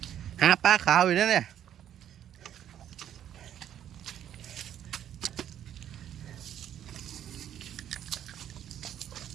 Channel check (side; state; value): left; quieter; 10.5 dB